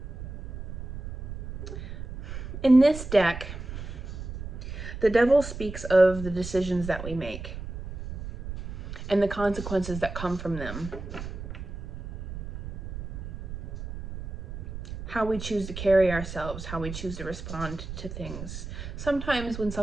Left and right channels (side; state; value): right; noise; rumble, 9 dB below the sound